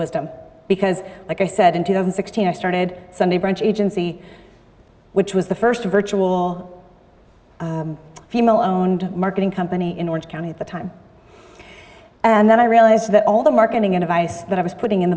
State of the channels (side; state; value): both; identical; correlation 1.00